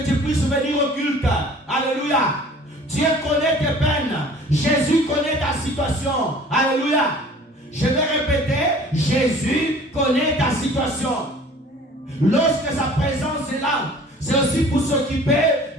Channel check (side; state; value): both; normal; correlation 0.48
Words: tu puisses venir au culte. Alléluia. Dieu connaît tes peines. Jésus connaît ta situation. Alléluia. Je vais répéter, Jésus connaît ta situation. Lorsque sa présence est là, c'est aussi pour s'occuper